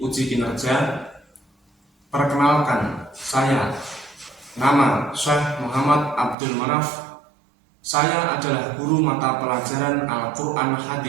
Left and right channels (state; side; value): drops out; left; at 6.4 s